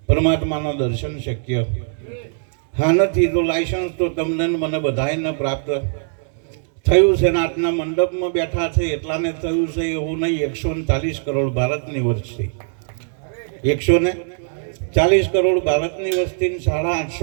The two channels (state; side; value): silent; left; digital silence